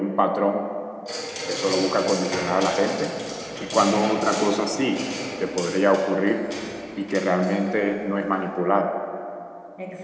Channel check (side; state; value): both; identical; correlation 1.00